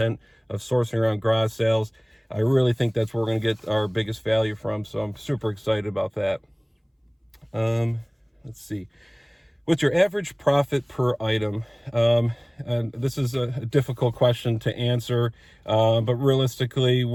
of sourcing around garage sales. I really think that's where we're going to get our biggest value from, so I'm super excited about that. Let's see. What's your average profit per item? And this is a difficult question to answer, but realistically,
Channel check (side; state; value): both; identical; correlation 1.00